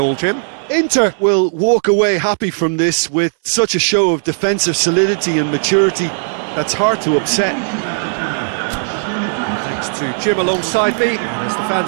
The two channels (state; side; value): silent; left; digital silence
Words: Jim? Inter will walk away happy from this with such a show of defensive solidity and maturity that's hard to upset. Thanks to Jim alongside me, and as the